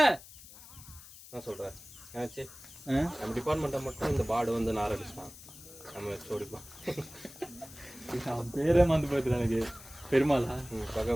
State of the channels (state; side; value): noise; left; hiss, 18 dB below the sound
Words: நான் சொல்றேன் ஏச்சு, நம்ம டிபார்ட்மெண்ட்டை மட்டும் இந்த பாடு வந்து நாரடிச்சிட்டான். நம்ம சோடிப்பா பேரே மறந்து போயிட்டு எனக்கு. பெருமாளா?